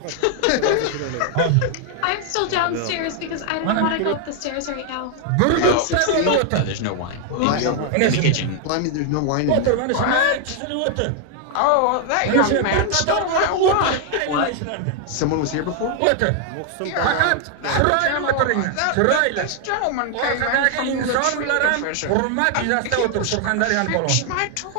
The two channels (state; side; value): different; both; correlation 0.00